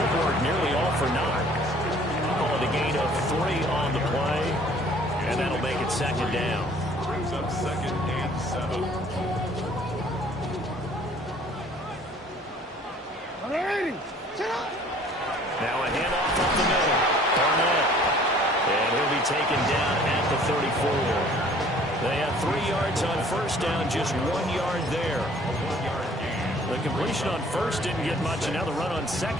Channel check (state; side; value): normal; both; correlation 0.54